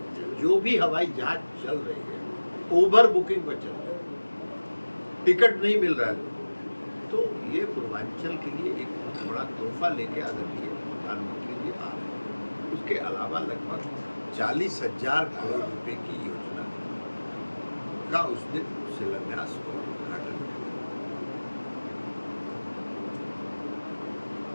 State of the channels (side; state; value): both; inverted; correlation -1.00